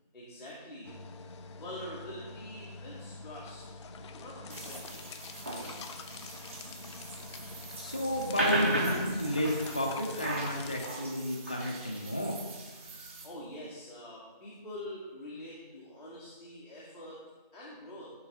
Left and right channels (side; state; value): both; inverted; correlation -0.51